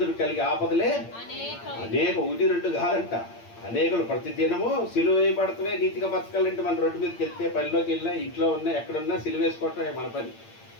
కలిగి ఆపదలే అనేక, ఒకటి రెండు కాదంట, అనేకలు. ప్రతి దినము సిలువ వేయబడతవే నీతిగా బతకాలంటే మన రోడ్డు మీదకి వెళ్తే, పనిలోకి వెళ్ళినా, ఇంట్లో ఉన్నా, ఎక్కడున్నా సిలువ వేసుకోవటమే మన పని.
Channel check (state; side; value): late; right; 8.7 ms